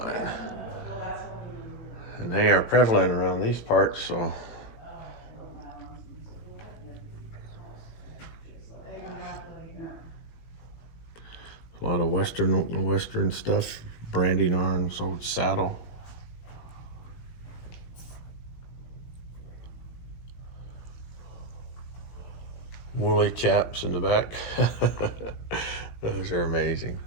And they are prevalent around these parts, so. A lot of western stuff, branding arms, old saddle. Woolly chaps in the back. Those are amazing.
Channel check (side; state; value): right; late; 18 ms